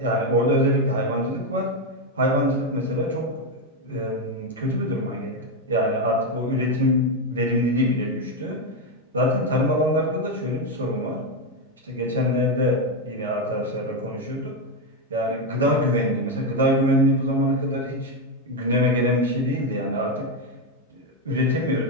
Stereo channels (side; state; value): both; normal; correlation 0.06